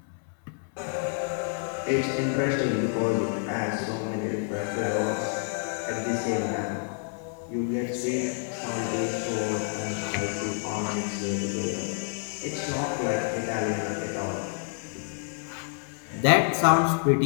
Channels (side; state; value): right; silent; 59 dB below the other